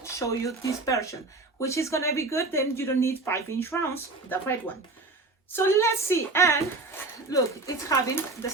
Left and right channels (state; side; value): quieter; left; 3.4 dB